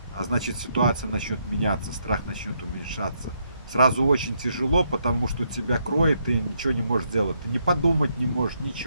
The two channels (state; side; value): inverted; both; correlation -0.76